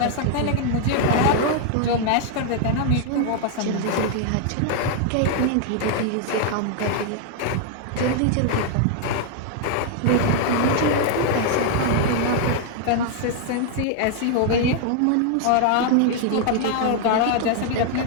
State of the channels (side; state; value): both; different; correlation 0.00